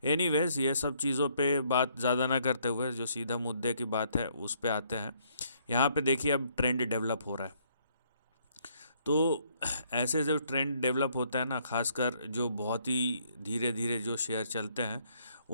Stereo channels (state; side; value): inverted; both; correlation -0.68